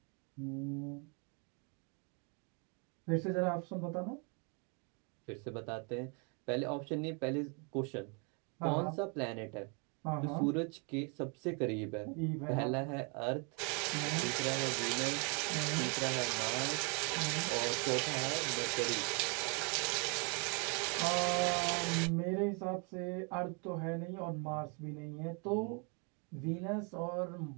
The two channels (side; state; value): left; quieter; 35.5 dB